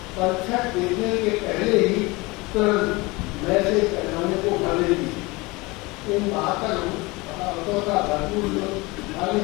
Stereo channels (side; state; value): right; quieter; 23.7 dB